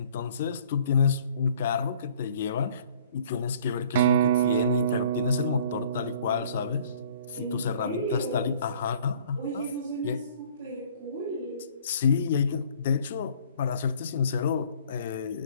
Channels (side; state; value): both; inverted; correlation -0.54